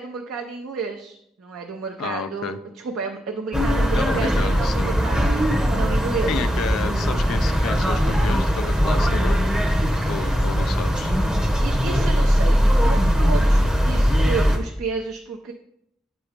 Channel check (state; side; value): normal; both; correlation 0.89